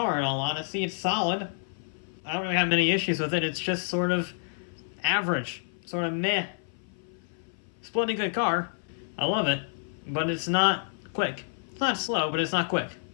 in all honesty. It's solid. I don't really have many issues with it. It's just sort of average, sort of meh. It's a bloody good car. I love it, but it's not quick. It's not slow, but it's not quick.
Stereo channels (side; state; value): right; silent; 56 dB below the other